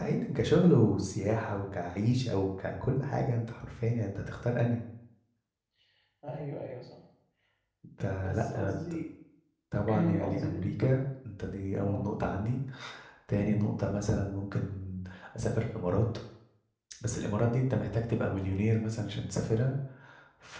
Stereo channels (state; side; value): identical; both; correlation 1.00